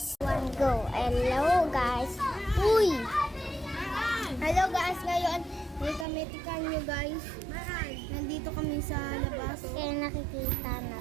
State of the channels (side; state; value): left; drops out; at 6.1 s